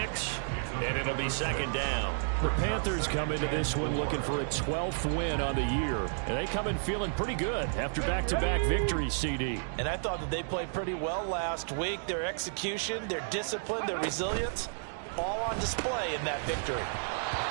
and it'll be 2nd down. The Panthers come into this one looking for a 12th win on the year. And they come in feeling pretty good after back-to-back victories, CD. And I thought that they played pretty well last week. Their execution, their discipline, their resilience, all on display in that victory.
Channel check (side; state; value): left; silent; digital silence